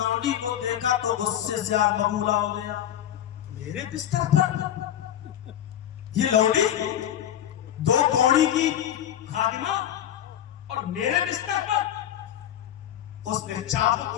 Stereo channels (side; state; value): right; quieter; 11.1 dB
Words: کو دیکھا تو غصے سے آگ ببولا ہو گیا. میرے بستر پر یہ لونڈی، 2 کوڑی کی خادمہ، اور میرے بستر پر. اس نے چابک